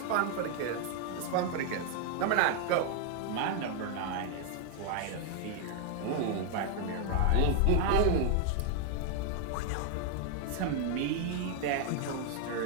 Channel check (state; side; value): different; both; correlation 0.00